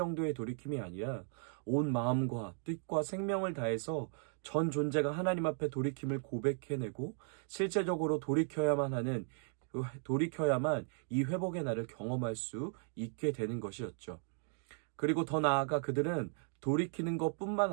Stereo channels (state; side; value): silent; left; 54 dB below the other